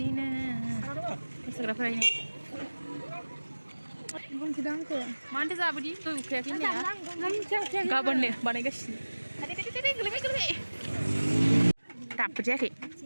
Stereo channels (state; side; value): inverted; both; correlation -1.00